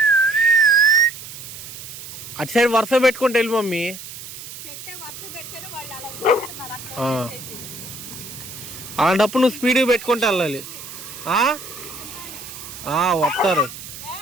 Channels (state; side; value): noise; right; hiss, 12 dB below the sound